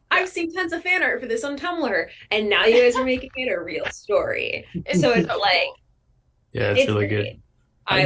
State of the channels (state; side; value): identical; both; correlation 1.00